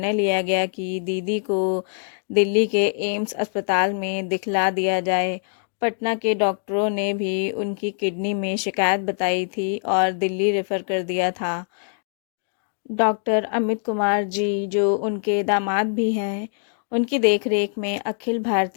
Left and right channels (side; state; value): right; silent; digital silence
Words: लिया गया कि दीदी को दिल्ली के एम्स अस्पताल में दिखला दिया जाए। पटना के डॉक्टरों ने भी उनकी किडनी में शिकायत बताई थी और दिल्ली रेफर कर दिया था। डॉक्टर अमित कुमार जी, जो उनके दामाद भी हैं, उनकी देखरेख में अखिल